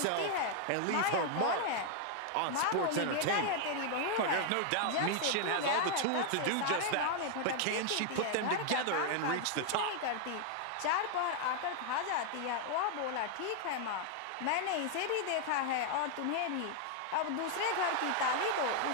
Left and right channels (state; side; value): different; both; correlation 0.00